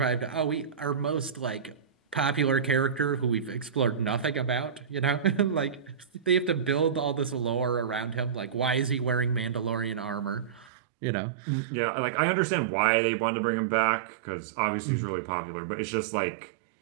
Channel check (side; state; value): left; drops out; at 10.7 s